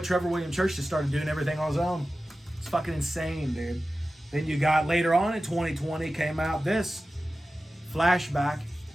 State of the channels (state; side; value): normal; both; correlation 0.95